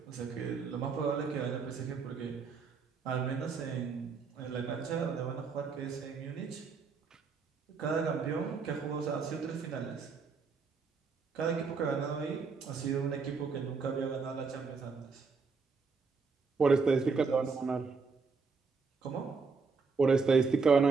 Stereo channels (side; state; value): left; quieter; 4.9 dB